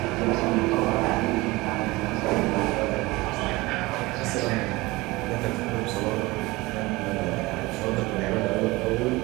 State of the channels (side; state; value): left; quieter; 21.7 dB